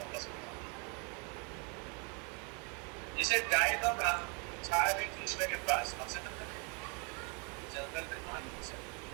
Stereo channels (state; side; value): quieter; left; 35.0 dB